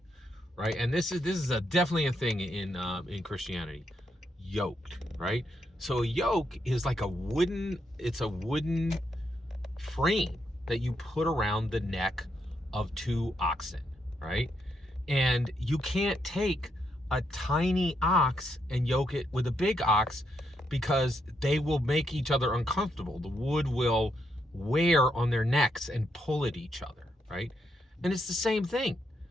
right? And this is definitely a thing in Christianity. Yoked, right? So a yoke is like a wooden frame that you put around the neck of 2 oxen, right? And you can't take a tiny ox and yoke it with a big ox, because they will make each other uncomfortable. The wood will wear on their necks and pull at each other, right? And it's the same thing.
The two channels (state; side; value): normal; both; correlation 0.79